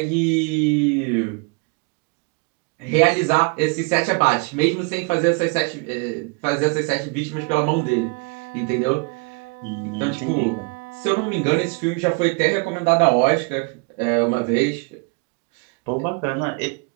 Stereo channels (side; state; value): left; quieter; 30.9 dB